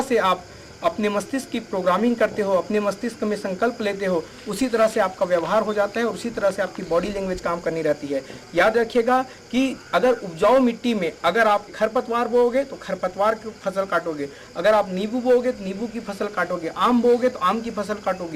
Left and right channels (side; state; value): both; identical; correlation 1.00